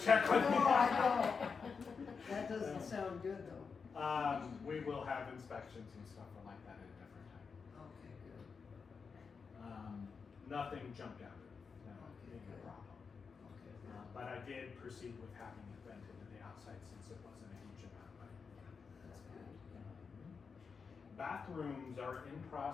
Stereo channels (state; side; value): quieter; right; 5.4 dB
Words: with me? No, I don't. That doesn't sound good though. We will have inspections and stuff like that at a different time. Okay, good. Nothing jumped out at me, no, Okay, big good. problem. Okay, good. But I did proceed with having it vented to the outside since it wasn't a huge amount, but. That's good. Bathrooms are in